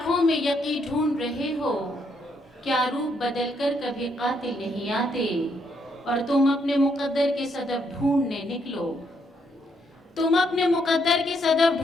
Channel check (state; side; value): normal; both; correlation 0.74